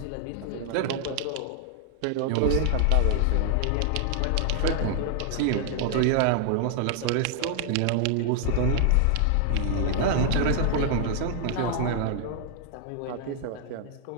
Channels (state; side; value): different; both; correlation 0.00